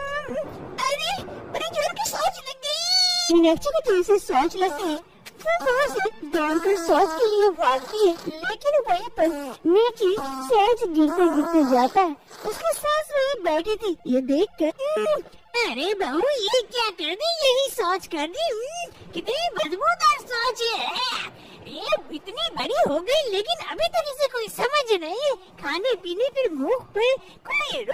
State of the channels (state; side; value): identical; both; correlation 1.00